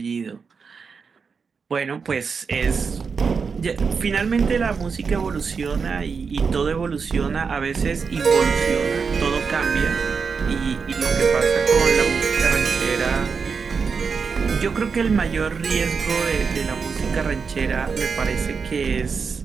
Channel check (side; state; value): left; quieter; 5.5 dB